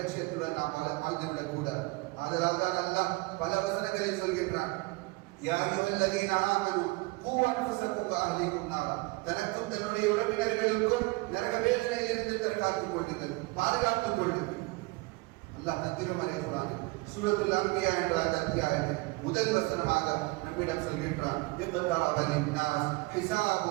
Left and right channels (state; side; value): quieter; left; 24.5 dB